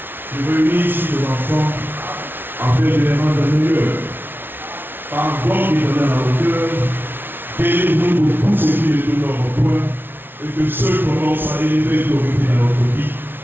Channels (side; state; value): left; late; 0.10 ms